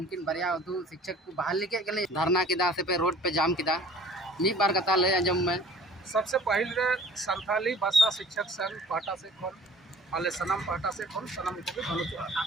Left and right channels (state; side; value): normal; both; correlation 0.48